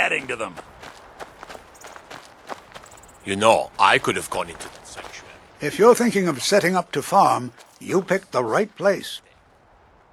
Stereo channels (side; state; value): both; identical; correlation 1.00